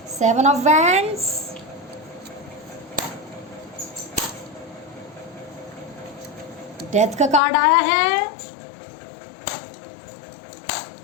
seven of wands, death का कार्ड आया है,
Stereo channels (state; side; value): drops out; right; at 7.4 s